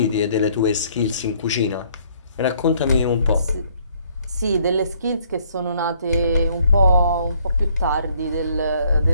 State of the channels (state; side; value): inverted; both; correlation -0.64